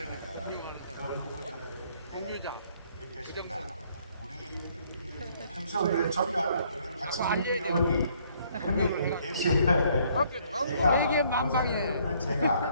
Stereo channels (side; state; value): both; inverted; correlation -0.65